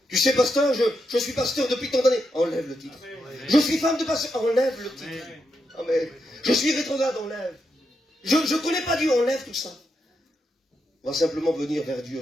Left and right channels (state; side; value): normal; both; correlation 0.83